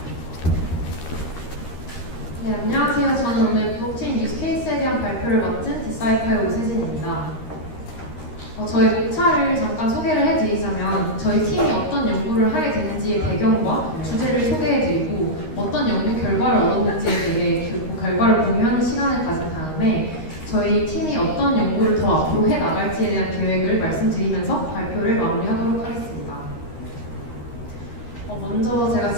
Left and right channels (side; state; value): right; late; 13 ms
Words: 네, 안녕하세요. 저는 오늘 블록체인 유스케이스에 대한 발표를 맡은 디사이플의 오세진입니다. 저희 목차를 잠깐 소개를 해드리자면 저희 팀이 어떤 연구를 하게 되는지의 배경과 주제를 소개해드리고 어떤 연구 결과를 얻었는지에 대해 그 결과를 공유하는 시간을 가진 다음에 저희 팀이 어떤 연구를 더 앞으로 해나갈지에 대한 계획을 말씀드리면서 발표를 마무리하도록 하겠습니다. 먼저 제가